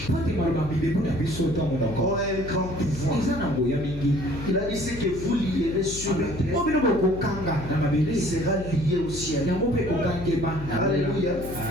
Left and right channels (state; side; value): noise; left; hum, 11 dB below the sound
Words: po ete maloba bibebu na biso ntango ont nako un grand pouvoir. eza na ngoya mingi. Il a dit ce que vous lierez sur la terre, o bino bokokanga na mabele il sera lié au ciel. yango mpe kokangema na Alléluia.